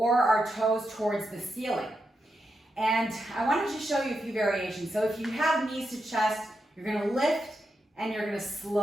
our toes towards the ceiling. And I wanted to show you a few variations. So if you have knees to chest, you're going to lift and you're going to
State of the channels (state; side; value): normal; both; correlation 0.86